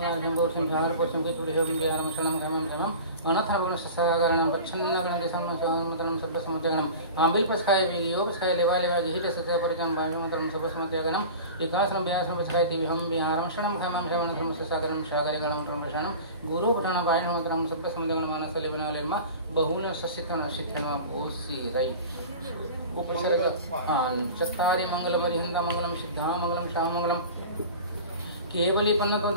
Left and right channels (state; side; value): inverted; both; correlation -0.36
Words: बोल संसार को संगीत पुरी हम ज्ञानम शरणम धर्मम धर्मम अनथा गुण ससागरणम पच्छन्न गण समतरम सब समत्यगणम आंबिल पसखाय वियो पसखाय लेवा लेवा जिहित सत्य परिचम बाणमतरम सब समत्यगणम एकाश्रम व्यासम पसखाय ति हम विहारम शरणम खमम शरणम धर्म ससागरम सागर गणम धर्मशरणम गुरु पुराण बाणमतरम सब समत्यगणम मानस लेवना लेमा बहुल ससितन सिद्धम ओसी राइट उपसर्ग चत्तारि मंगलमरि हिंदा मंगलम सिद्धा मंगलम शाम मंगलम केवली पन्नतो